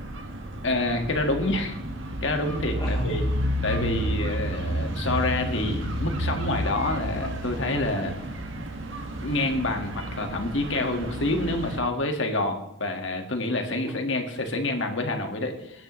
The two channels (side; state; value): both; normal; correlation 0.32